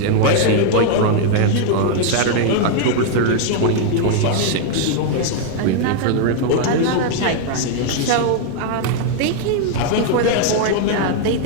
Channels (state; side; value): different; both; correlation 0.00